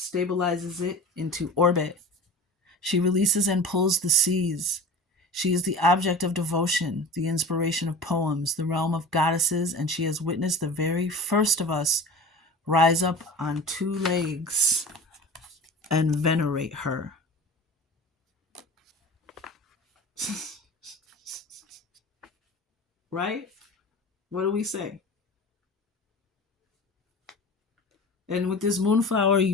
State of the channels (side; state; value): both; normal; correlation 0.35